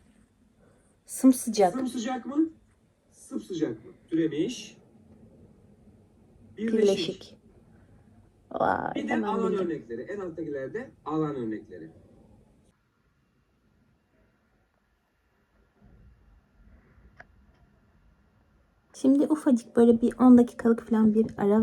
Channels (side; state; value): both; identical; correlation 1.00